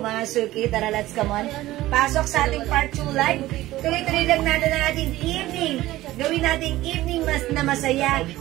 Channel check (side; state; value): left; quieter; 16.4 dB